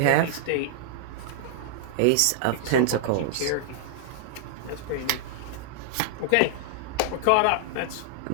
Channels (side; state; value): both; different; correlation -0.01